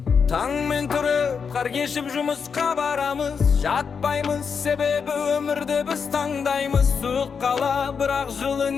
Таңмен тұрып қар кешіп жұмысқа барамыз, жатпаймыз, себебі өмірді біз таңдаймыз. Суық қала бірақ жылы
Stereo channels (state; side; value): quieter; right; 6.1 dB